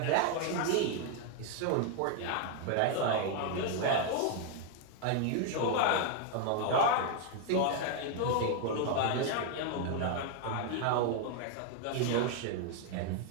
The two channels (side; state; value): both; different; correlation 0.00